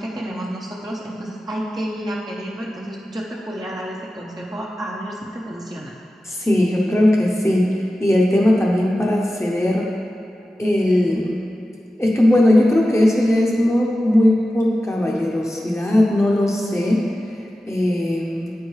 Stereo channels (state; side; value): normal; both; correlation 0.94